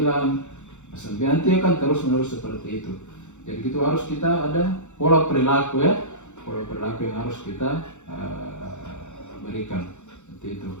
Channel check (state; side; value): late; right; 0.84 ms